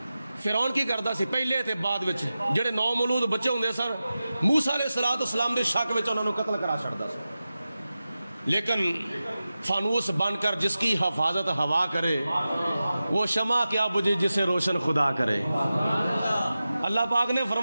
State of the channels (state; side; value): inverted; both; correlation -0.94